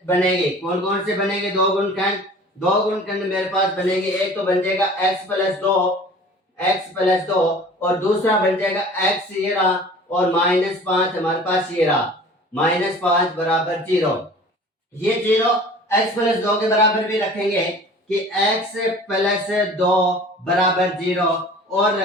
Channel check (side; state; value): both; normal; correlation 0.44